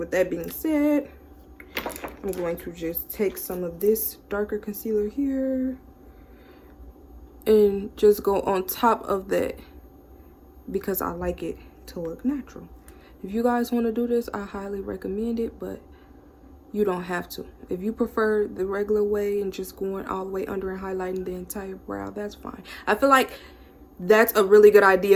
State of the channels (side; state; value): both; identical; correlation 1.00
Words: that being said, I'm going to just take some of this darker concealer here and just go on top of that because I like it to look natural. If you guys want to do this, I highly recommend it, but you don't have to. If you prefer the regular way and just going all the way under and highlighting the entire brow, that's fine. I feel like that's a really good